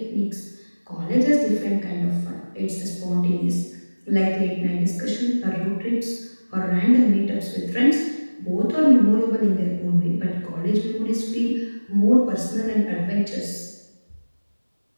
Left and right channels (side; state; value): both; inverted; correlation -1.00